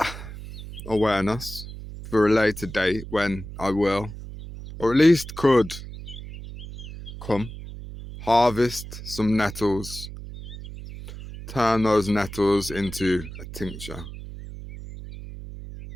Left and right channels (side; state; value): right; noise; hum, 12 dB below the sound